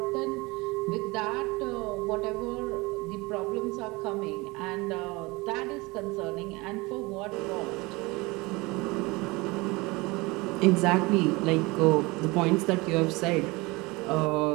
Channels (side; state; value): left; quieter; 23.9 dB